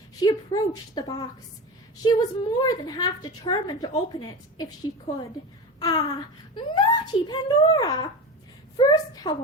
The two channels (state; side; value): normal; both; correlation 0.26